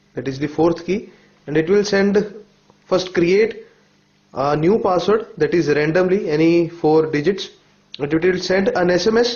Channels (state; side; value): identical; both; correlation 1.00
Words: that is the fourth key, and it will first create a new password that is randomly any 4 digits, and it will send an SMS